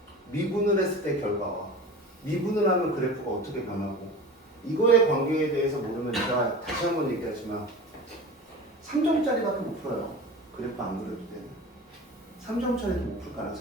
미분을 했을 때 결과와 미분을 하면 그래프가 어떻게 변하고 이거의 관계에 대해서 모르면 제가 다시 한번 얘기하지만 3점짜리밖에 못 풀어요. 그래프 안 그려도 되는 3점짜리도 못 풀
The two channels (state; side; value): normal; both; correlation 0.35